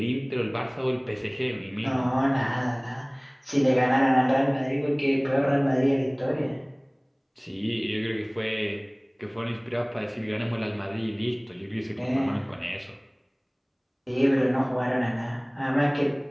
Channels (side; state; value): both; identical; correlation 1.00